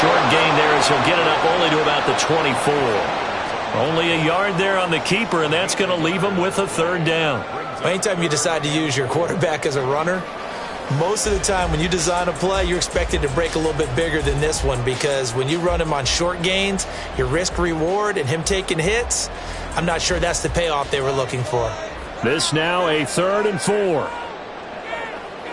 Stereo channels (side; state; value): both; identical; correlation 1.00